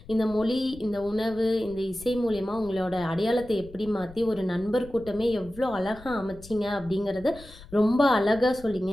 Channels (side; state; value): left; noise; rumble, 19 dB below the sound